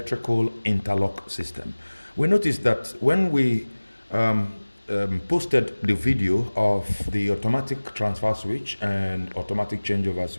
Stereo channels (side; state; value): both; inverted; correlation -1.00